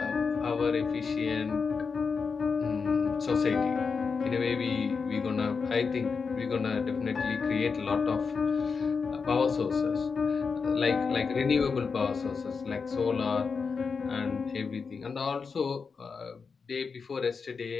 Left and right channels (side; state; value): right; quieter; 5.3 dB